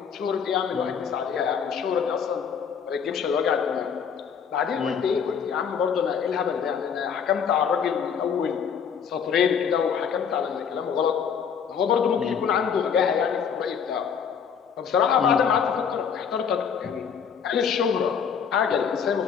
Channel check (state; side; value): quieter; right; 7.1 dB